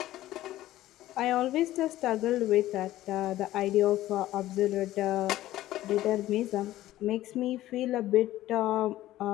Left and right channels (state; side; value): quieter; right; 14.8 dB